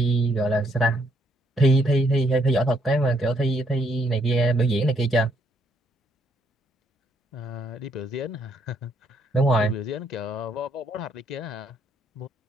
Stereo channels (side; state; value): both; normal; correlation 0.71